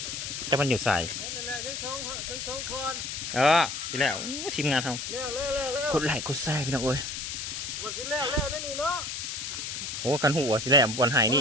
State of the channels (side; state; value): left; noise; hiss, 5 dB below the sound